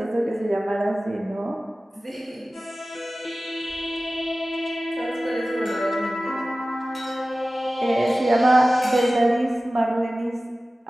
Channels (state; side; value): normal; both; correlation 0.96